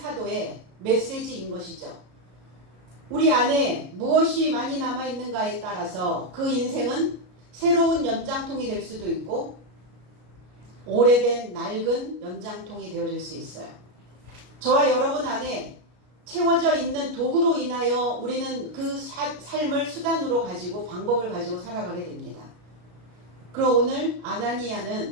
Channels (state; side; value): late; left; 33 ms